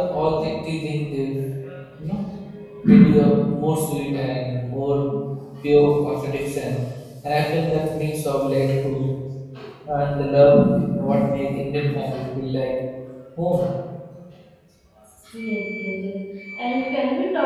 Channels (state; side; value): identical; both; correlation 1.00